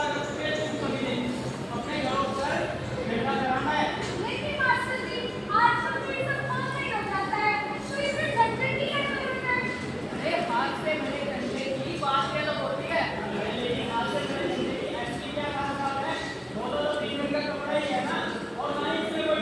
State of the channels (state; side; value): identical; both; correlation 1.00